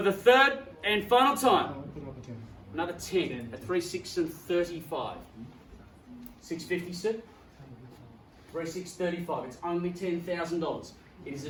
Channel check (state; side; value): identical; both; correlation 1.00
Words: the third and final time. Another 10 at 3635. 650, sir? 3635. It's only $10,000. It is